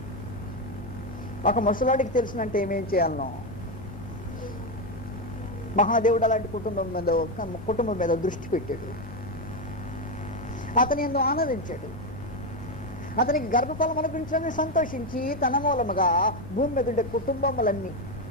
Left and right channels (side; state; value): both; normal; correlation 0.09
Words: ఒక ముసలాడికి తెలిసినంటే ఏమేం చేయాలనో, మహాదేవుడు అలాంటి కుటుంబం మీద దృష్టి పెట్టాడు. అతని ఎందు ఆనందించాడు. అతనికి గర్భఫలం అనుగ్రహించాలని సంతోషించి తన మూలముగా భూమి మీద ఉండే కుటుంబములన్నీ,